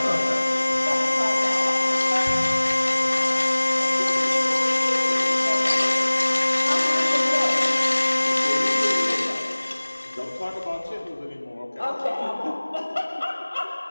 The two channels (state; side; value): inverted; both; correlation -1.00